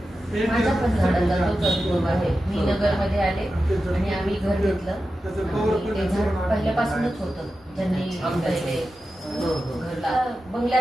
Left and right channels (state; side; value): normal; both; correlation 0.92